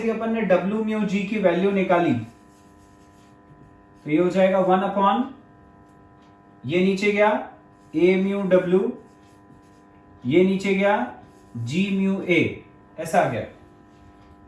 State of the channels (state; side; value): identical; both; correlation 1.00